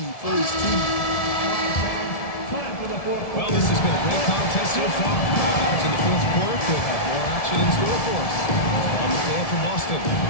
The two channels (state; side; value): late; right; 1.7 ms